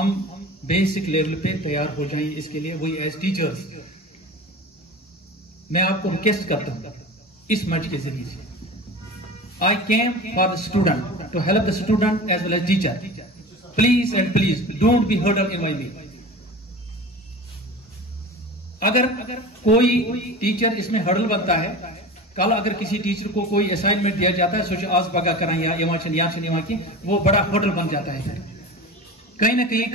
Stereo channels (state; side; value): normal; both; correlation 0.33